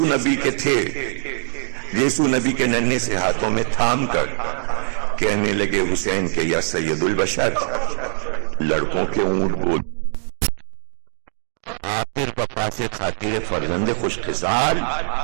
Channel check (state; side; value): silent; left; digital silence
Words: نبی کے تھے. یسوع نبی کے ننھے سے ہاتھوں میں تھام کر کہنے لگے حسین کے یا سید البشر, لڑکوں کے اونٹ بول. آخر وفا سے خاطر فرزند خوش خصال,